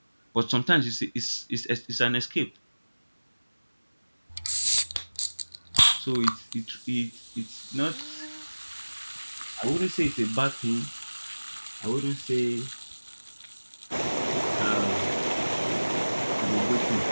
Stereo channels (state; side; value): inverted; both; correlation -1.00